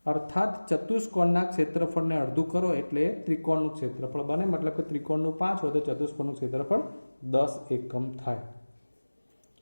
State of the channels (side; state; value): both; inverted; correlation -1.00